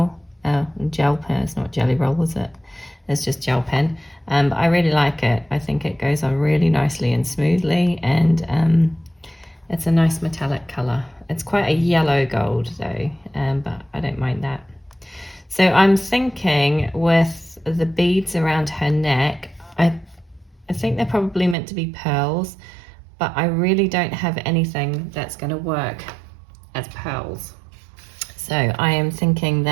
gel pen. It's not Jelly Roll, is it? It's just gel pen. But I really like it. I think it goes on really nicely and smoothly, and it's a nice metallic colour. It's quite a yellow gold though, but I don't mind that. So I'm thinking with the beads around her neck, I think they're probably meant to be pearls, but I really don't have anything that's going to work as pearls. So I am thinking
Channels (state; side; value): drops out; left; at 21.6 s